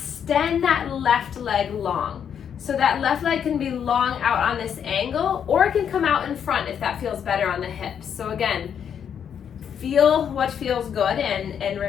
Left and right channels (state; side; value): quieter; right; 8.2 dB